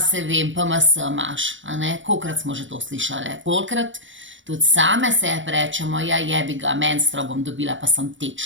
vem, PMS imaš, a ne, kolikokrat smo že to slišali, kolikokrat tudi same sebi rečemo, ja jebi ga, menstro bom dobila, pa sem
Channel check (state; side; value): late; left; 0.56 ms